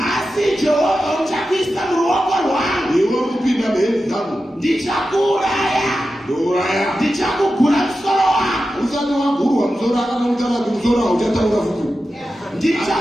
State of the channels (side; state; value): both; normal; correlation 0.92